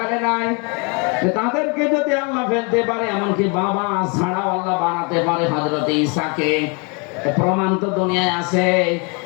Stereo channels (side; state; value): right; quieter; 33.2 dB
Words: নাই। তাদেরকে যদি আল্লাহ ফেলতে পারে, এমনকি বাবা ছাড়াও আল্লাহ বানাতে পারে হযরত ঈসাকে, প্রমাণ তো দুনিয়ায় আছে।